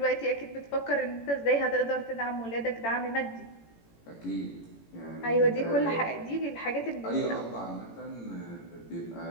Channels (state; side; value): late; right; 18 ms